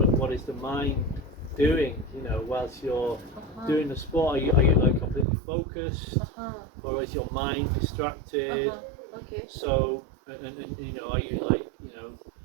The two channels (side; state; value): left; drops out; at 5.2 s